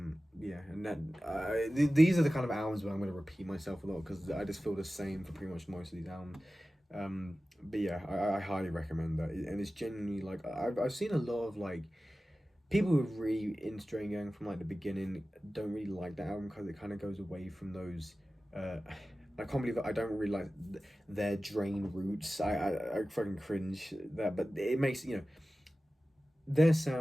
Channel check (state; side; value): normal; both; correlation 0.96